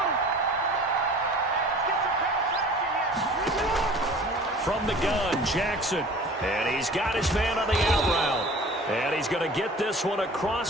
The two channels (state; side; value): normal; both; correlation 0.44